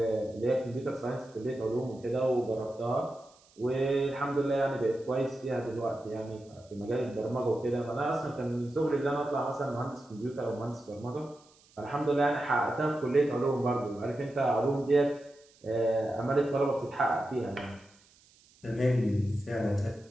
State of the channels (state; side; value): noise; right; hiss, 29 dB below the sound